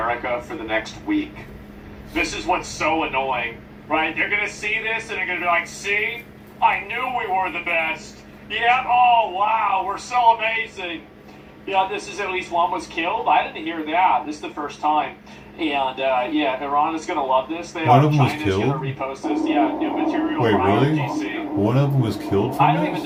for the next week. This is what's so annoying, right? They're gonna see this and they're gonna be like, "See, I knew we were the best. Yeah. Oh wow, we're so amazing." Yeah, this is at least one was killed. I didn't hear that. This is the first time. And yeah, Iran is going to love this. One of them was China's killed? going to repost this. Yeah, new material Wait, from really? IRGC. One of them was killed I from don't this?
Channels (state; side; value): identical; both; correlation 1.00